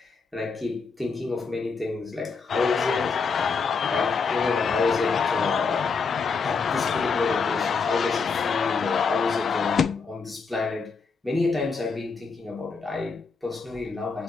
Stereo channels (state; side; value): quieter; right; 5.0 dB